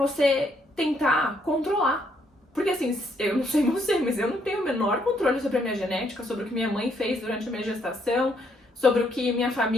tentar controlar. Porque assim, eu não sei você, mas eu não tenho o menor controle sobre a minha genética, sobre o que minha mãe fez durante a minha gestação, sobre o que minha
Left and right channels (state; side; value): normal; both; correlation 0.72